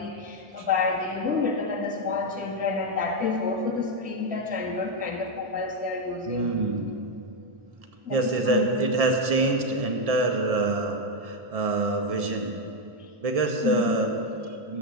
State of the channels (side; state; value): left; late; 1.7 ms